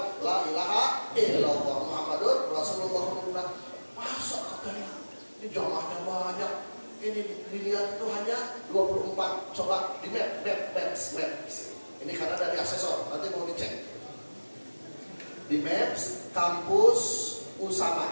la ilaha illallah Muhammadur Rasulullah. Masa katanya ini jamaahnya banyak. Ini dilihat itu hanya 24. Coba di maps. Ini karena dari asesor, nanti mau dicek. Di maps kampus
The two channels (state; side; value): inverted; both; correlation -1.00